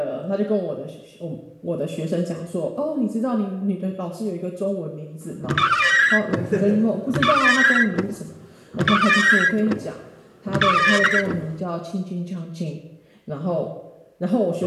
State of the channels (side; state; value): both; identical; correlation 1.00